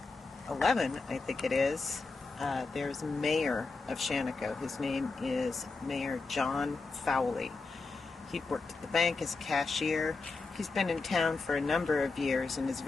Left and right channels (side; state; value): right; quieter; 4.0 dB